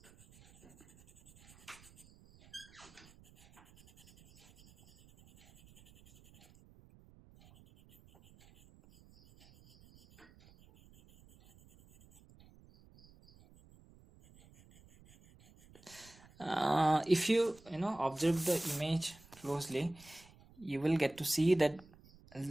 If you observe the image closely, you will get to see that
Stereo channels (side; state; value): right; noise; rumble, 25 dB below the sound